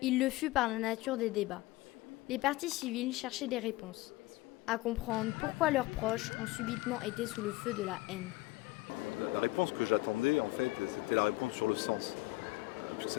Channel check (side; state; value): right; quieter; 19.7 dB